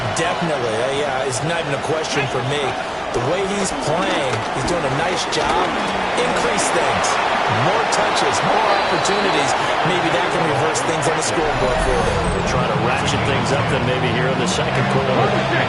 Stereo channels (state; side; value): identical; both; correlation 1.00